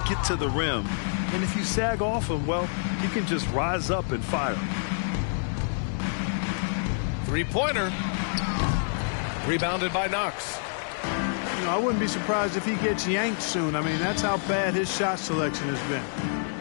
get to the rim. And if you sag off him, well, he can just rise up and fire. Three-pointer. Rebounded by Knox. You know, I wouldn't be surprised if he gets yanked soon. I mean, that's how bad his shot selection has been.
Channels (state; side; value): silent; right; digital silence